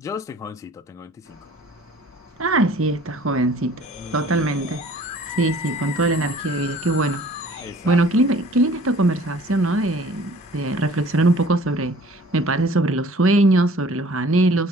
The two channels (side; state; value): both; normal; correlation 0.51